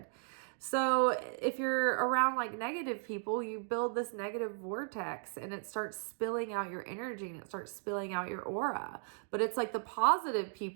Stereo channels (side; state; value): left; silent; 54 dB below the other